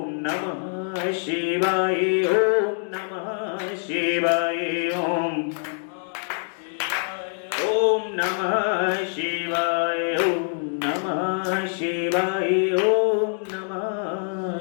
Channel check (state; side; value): silent; right; 62 dB below the other